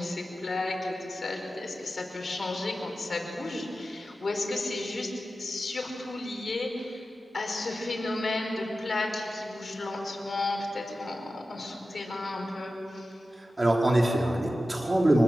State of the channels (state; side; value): normal; both; correlation 0.93